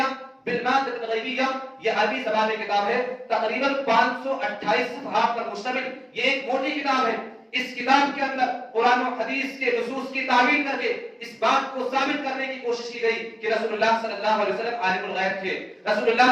بالمادة الغیبیہ، یہ عربی زبان میں کتاب ہے، تقریباً 528 صفحات پر مشتمل یہ ایک موٹی کتاب ہے۔ اس کتاب کے اندر قرآن و حدیث کے نصوص کی تعویل کر کے اس بات کو ثابت کرنے کی کوشش کی گئی کہ رسول اللہ صلی اللہ علیہ وسلم عالم الغیب تھے، رسول اللہ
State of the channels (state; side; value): identical; both; correlation 1.00